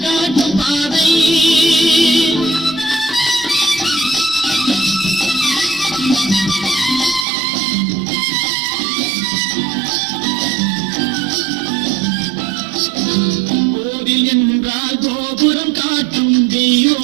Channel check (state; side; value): drops out; left; at 7.2 s